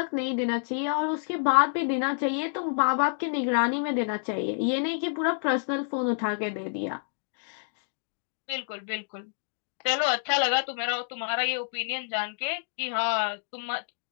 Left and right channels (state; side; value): silent; right; digital silence